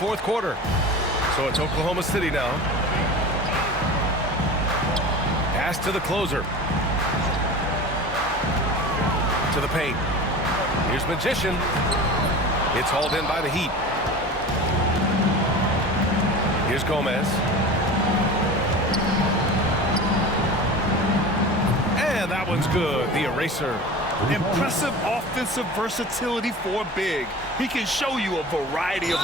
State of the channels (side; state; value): both; normal; correlation 0.34